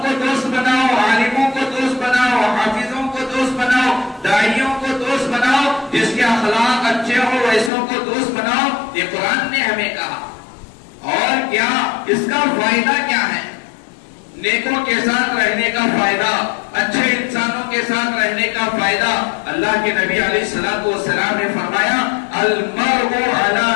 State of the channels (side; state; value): right; drops out; at 7.7 s